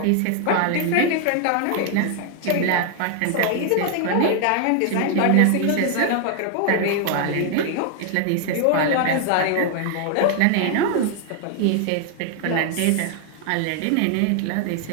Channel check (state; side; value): different; both; correlation 0.00